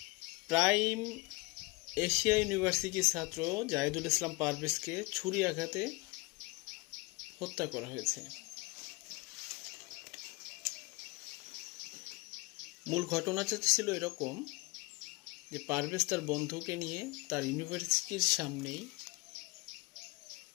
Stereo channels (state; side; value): quieter; right; 25.3 dB